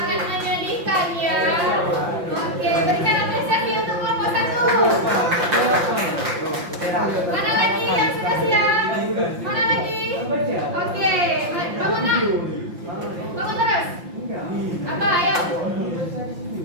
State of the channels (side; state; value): left; late; 5.8 ms